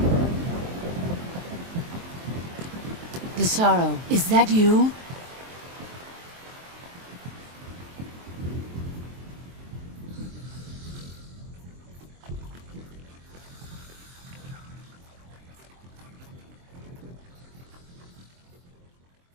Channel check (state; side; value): late; left; 23 ms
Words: Desaro, is that you?